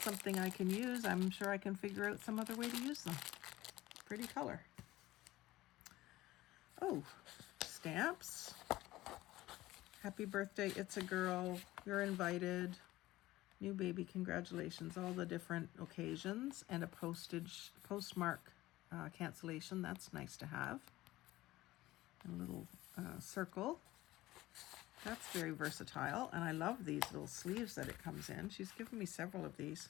I can use, I'm sure I can figure out some other way to use them. Pretty color. Oh, stamps. Happy birthday, it's a girl. You're invited. New baby, congratulations. All the different occasions and a postmark cancellation. That's nice to have. A little circle. That's very versatile. And I love these little sleeves that it comes in. She's given me several of these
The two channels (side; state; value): right; quieter; 17.2 dB